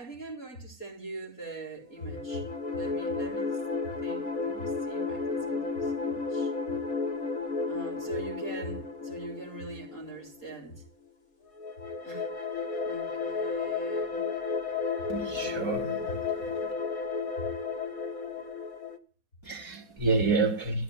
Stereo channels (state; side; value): late; right; 4.2 ms